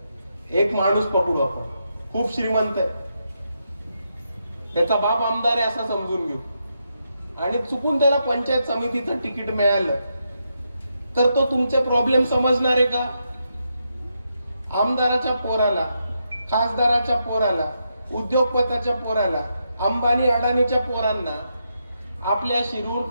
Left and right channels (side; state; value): both; inverted; correlation -0.82